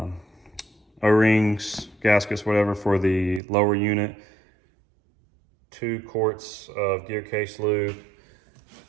O-rings, gaskets, whatever, for the lower unit, 2 quarts of gear case lube.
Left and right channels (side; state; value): left; drops out; at 3.4 s